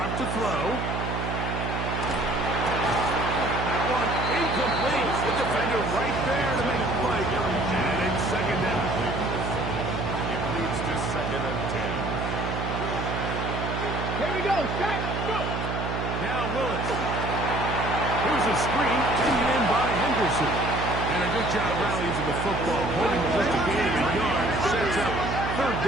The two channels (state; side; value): noise; right; hum, 3 dB below the sound